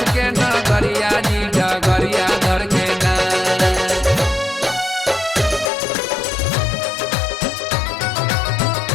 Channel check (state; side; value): drops out; right; at 5.7 s